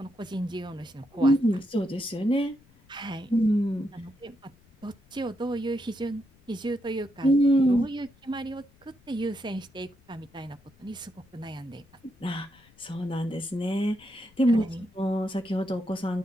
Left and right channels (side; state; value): left; noise; rumble, 29 dB below the sound